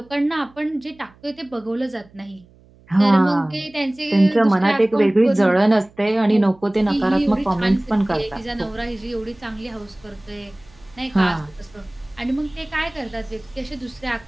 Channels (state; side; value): noise; right; hum, 28 dB below the sound